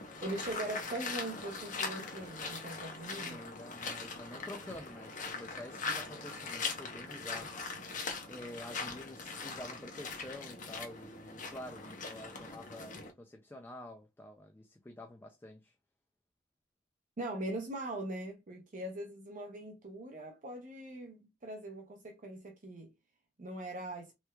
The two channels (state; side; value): normal; both; correlation 0.23